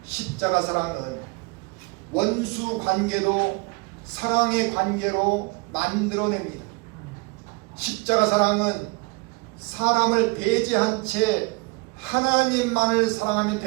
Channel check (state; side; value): quieter; left; 27.3 dB